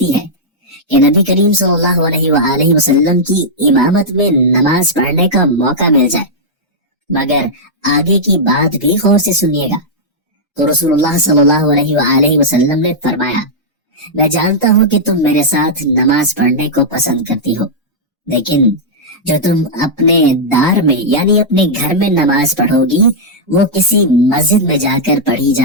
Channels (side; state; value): both; normal; correlation -0.08